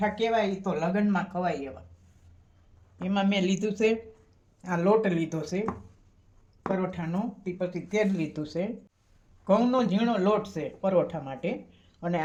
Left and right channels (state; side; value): identical; both; correlation 1.00